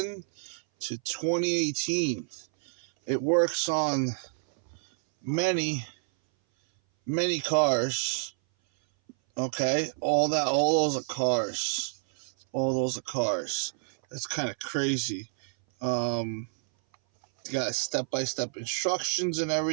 to 2018. It works on many cars. Okay, all those are cars. All those are cars. That's kind of crazy. You got step-by-step instructions and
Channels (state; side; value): silent; left; 58 dB below the other